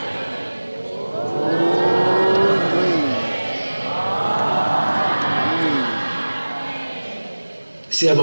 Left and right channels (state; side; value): inverted; both; correlation -1.00